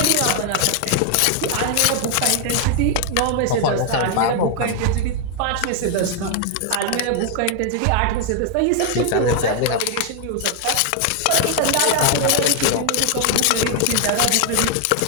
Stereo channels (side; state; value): both; different; correlation 0.00